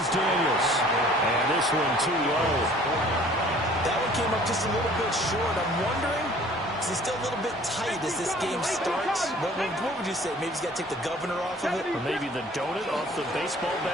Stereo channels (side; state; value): both; normal; correlation 0.52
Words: Daniels. And this one too low. That one came up just a little bit short. I'm wondering, is he still a little bit tight as this game starts? What would you say? Maybe he's got to take the governor off of it? Or maybe the donut off the baseball